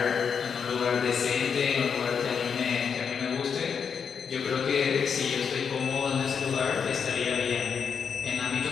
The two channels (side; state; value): right; quieter; 6.7 dB